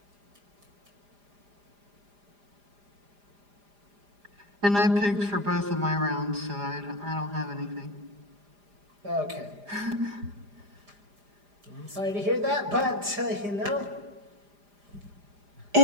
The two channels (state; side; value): late; left; 4.9 ms